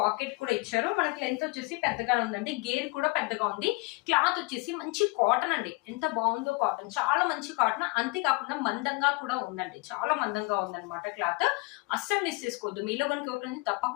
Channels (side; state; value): right; quieter; 26.8 dB